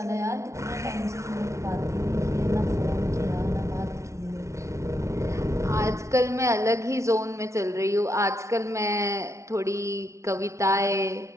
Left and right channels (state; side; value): late; left; 0.14 ms